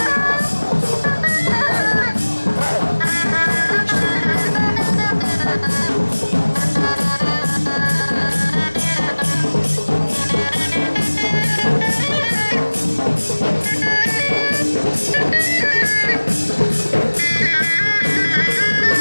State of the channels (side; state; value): both; inverted; correlation -1.00